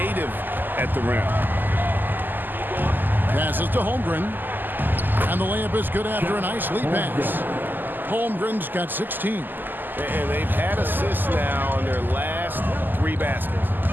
at the rim. Passes to Holmgren. And the layup is good after a nice lead pass. Holmgren's got 16. And they've had assists now on their last 3 baskets.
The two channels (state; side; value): late; left; 0.089 ms